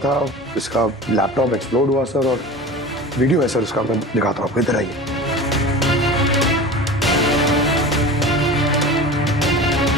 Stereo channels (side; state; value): both; normal; correlation 0.35